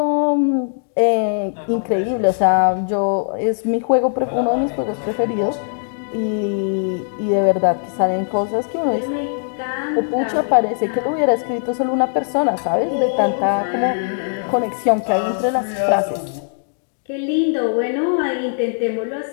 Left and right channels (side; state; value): right; silent; digital silence